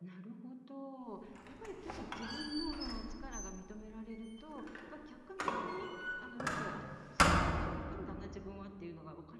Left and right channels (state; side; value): identical; both; correlation 1.00